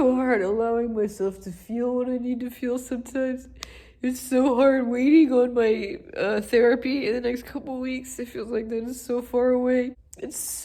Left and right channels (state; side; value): identical; both; correlation 1.00